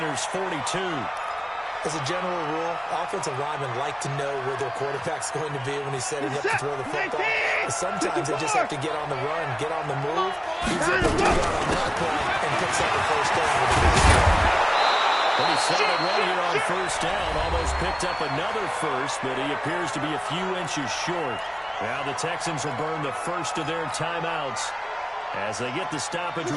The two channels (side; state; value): both; identical; correlation 1.00